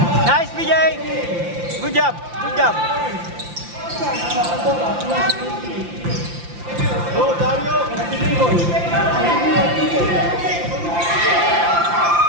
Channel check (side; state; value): left; late; 5.8 ms